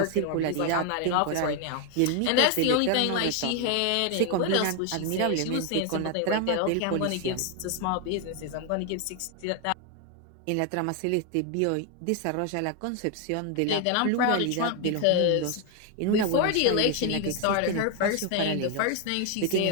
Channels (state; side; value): different; both; correlation 0.01